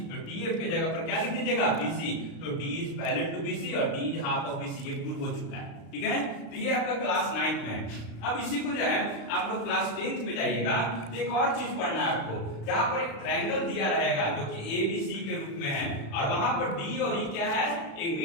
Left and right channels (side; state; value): right; late; 36 ms